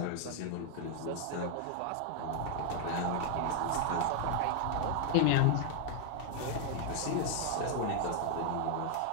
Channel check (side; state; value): both; different; correlation 0.00